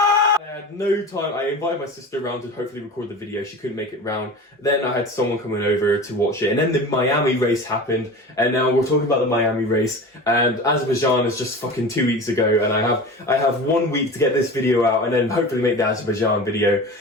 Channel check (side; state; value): both; normal; correlation 0.33